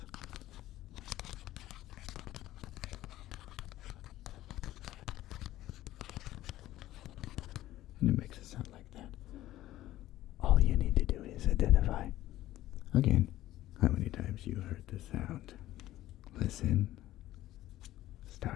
And it makes a sound like that. All you need to do is identify, again, how many times you heard the sound. Listen.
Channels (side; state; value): right; quieter; 14.8 dB